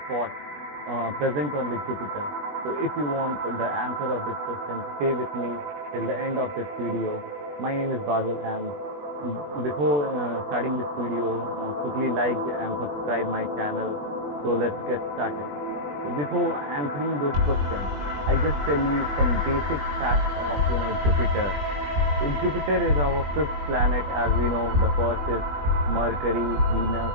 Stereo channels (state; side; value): late; left; 20 ms